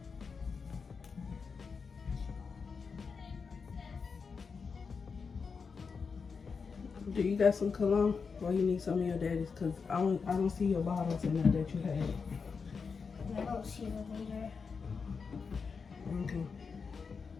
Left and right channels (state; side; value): quieter; right; 5.4 dB